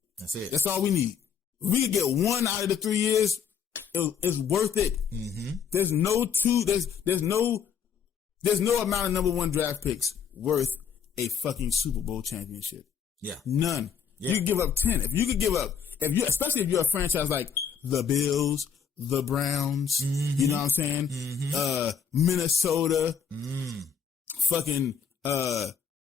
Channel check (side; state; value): right; quieter; 7.2 dB